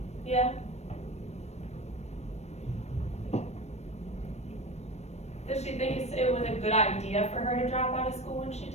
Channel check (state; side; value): late; right; 0.32 ms